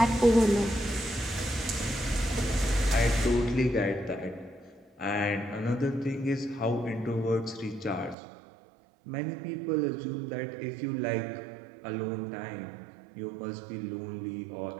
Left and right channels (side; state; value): left; drops out; at 8.2 s